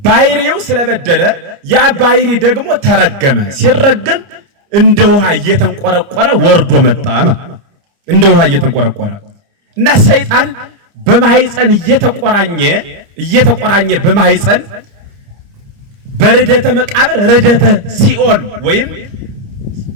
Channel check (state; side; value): late; left; 30 ms